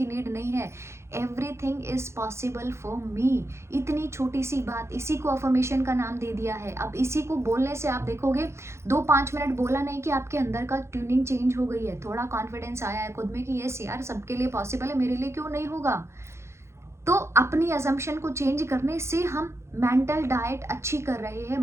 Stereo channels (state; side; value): late; left; 0.13 ms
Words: नीड नहीं है। Everything is possible for me. इतनी छोटी सी बात, इसी को अफर्मेशन का नाम दे दिया है। अब इसी को बोलने से आप देखोगे, 2-5 मिनट बोला नहीं कि आपके अंदर का ट्यूनिंग चेंज हो गई है, थोड़ा कॉन्फिडेंस आया है खुद में कि यस यार, सबके लिए पॉसिबल है, मेरे लिए क्यों नहीं होगा। तो अपनी अजम्पशन को चेंज करने से हम मेंटल डाइट अच्छी कर रहे हैं।